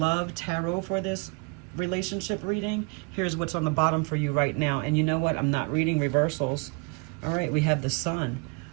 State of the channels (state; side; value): quieter; left; 31.4 dB